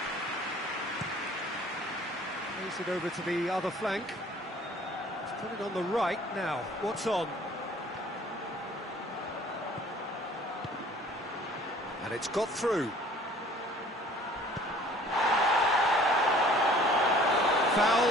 Plays it over to the other flank. He's put it on the right now. What's on? And it's got through.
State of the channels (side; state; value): both; normal; correlation 0.52